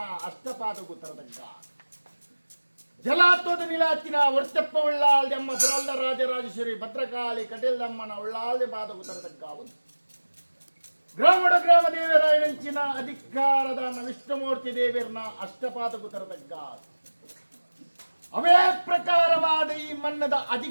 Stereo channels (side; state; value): both; inverted; correlation -1.00